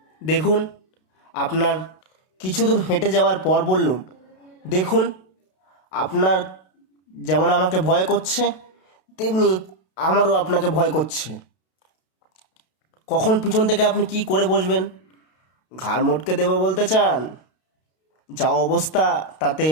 দেখুন আপনার কিছু দূর হেঁটে যাওয়ার পর বললুম, দেখুন, আপনার যেমন আমাকে ভয় করছে, তেমনি আমারও আপনাকে ভয় করছে। কখন পিছন থেকে আপনি কি করে বসবেন? ঘাড় মটকে দেবো বলতে চান? যা অবস্থা, তাতে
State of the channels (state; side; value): late; right; 32 ms